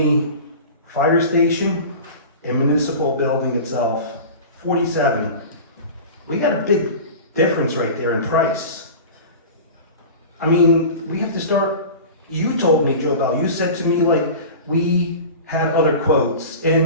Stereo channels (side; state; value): both; inverted; correlation -0.34